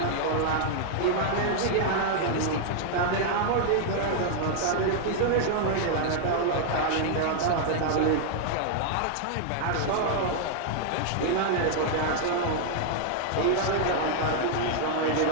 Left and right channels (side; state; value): both; different; correlation -0.01